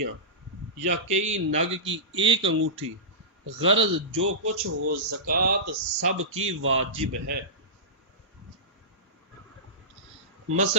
یا کئی نگ کی 1 انگوٹھی، غرض جو کچھ ہو زکوٰۃ سب کی واجب ہے۔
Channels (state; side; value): normal; both; correlation -0.18